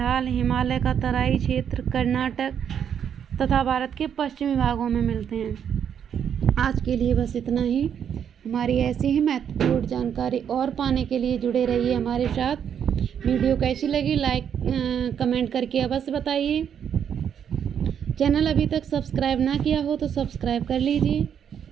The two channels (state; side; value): quieter; left; 8.4 dB